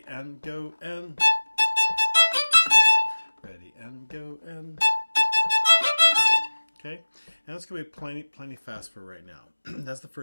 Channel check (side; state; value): both; inverted; correlation -1.00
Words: and go, and ready, and go, and okay. And that's going to be plenty fast for right now. That's the